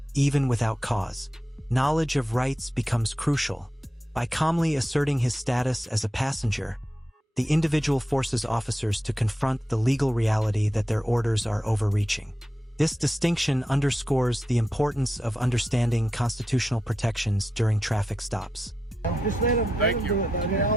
even without cause. Knowledge of rights becomes crucial. By calmly asserting his status as a passenger, the individual forces officers to confront the legal reality that their orders are overreaching. This distinction underscores the importance of understanding constitutional protections during traffic stops. Just let them, Thank you. do it, though. They're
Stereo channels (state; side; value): normal; both; correlation 0.87